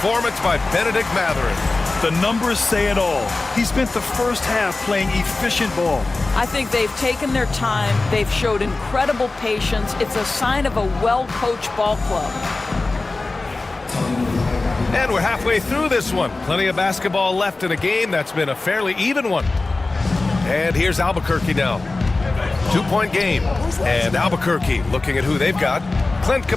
by Benedict Mathurin. The numbers say it all. He spent the first half playing efficient ball. I think they've taken their time. They've showed incredible patience. It's a sign of a well-coached ball club. And we're halfway through this one. Plenty of basketball left in a game that's been a fairly even one. And here's Albuquerque now. 2-point game. And Albuquerque looking at who they've got. Clint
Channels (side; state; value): right; quieter; 3.3 dB